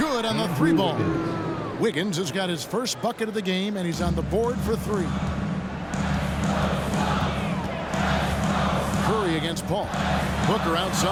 on the 3-ball. Wiggins has got his first bucket of the game, and he's on the board for 3. Curry against Paul. Booker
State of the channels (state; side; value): identical; both; correlation 1.00